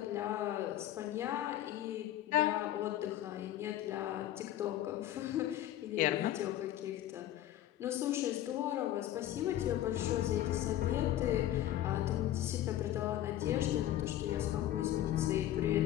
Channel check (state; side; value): quieter; right; 13.0 dB